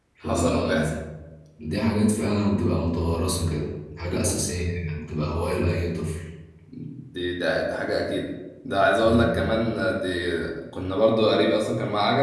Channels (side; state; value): both; identical; correlation 1.00